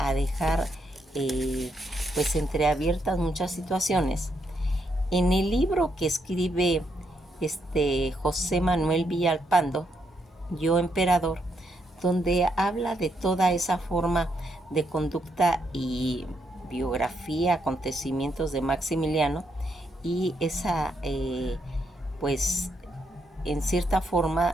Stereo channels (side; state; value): both; normal; correlation 0.78